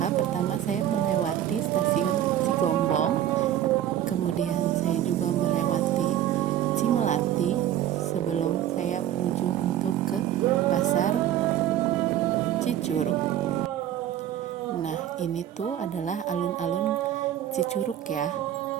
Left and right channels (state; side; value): quieter; left; 11.5 dB